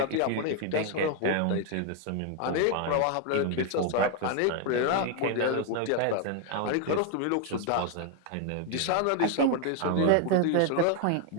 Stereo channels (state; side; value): different; both; correlation 0.01